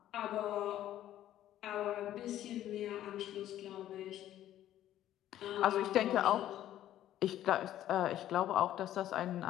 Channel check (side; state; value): right; quieter; 12.5 dB